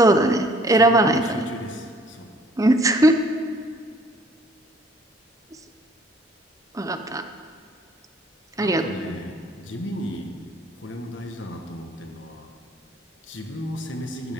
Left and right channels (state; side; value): normal; both; correlation 0.59